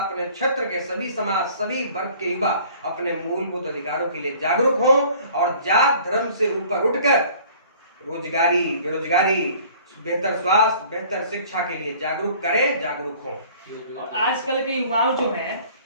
क्षेत्र के सभी समाज, सभी वर्ग के युवा अपने मूलभूत अधिकारों के लिए जागरूक हों और जात धर्म से ऊपर उठकर रोजगारी, बेरोजगारी, बेहतर स्वास्थ्य, बेहतर शिक्षा के लिए जागरूक करें, जागरूक हों। और आजकल के युवाओं जो हैं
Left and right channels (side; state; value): both; inverted; correlation -0.51